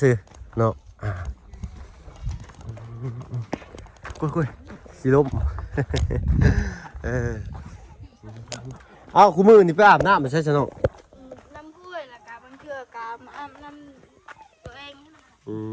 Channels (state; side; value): identical; both; correlation 1.00